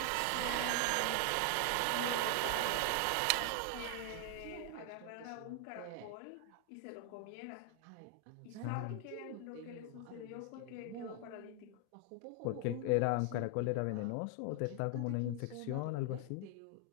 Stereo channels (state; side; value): different; both; correlation 0.00